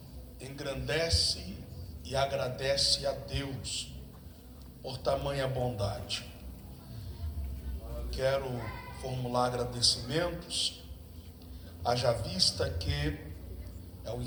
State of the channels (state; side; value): identical; both; correlation 1.00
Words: engrandece e agradece a Deus por tamanha bondade. Quero formular agradecimentos, haja vista que é o